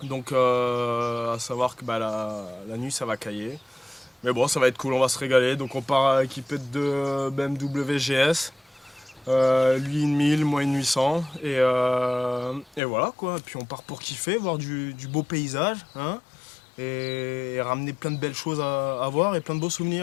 Donc à savoir que la nuit ça va cailler. Mais bon, ça va être cool, on va se régaler. Donc on part équipé de deux BMW GS, lui une 1000, moi une 800. Et voilà quoi, puis on part pour kiffer, voir du beau paysage, hein, et ramener plein de belles choses à voir et plein de beaux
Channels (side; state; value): right; drops out; at 12.8 s